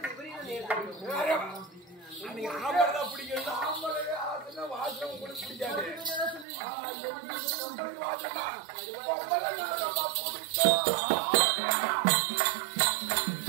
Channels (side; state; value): left; drops out; at 6.5 s